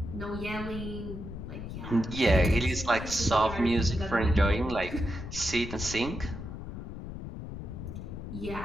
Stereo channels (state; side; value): noise; left; rumble, 8 dB below the sound